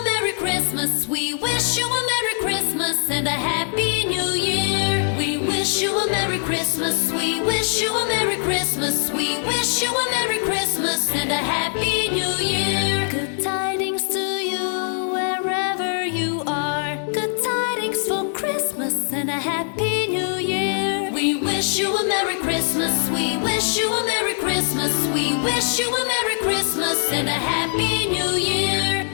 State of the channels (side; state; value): right; silent; 59 dB below the other